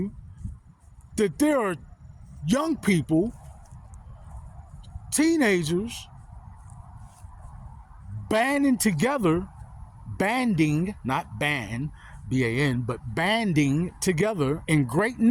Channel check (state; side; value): identical; both; correlation 1.00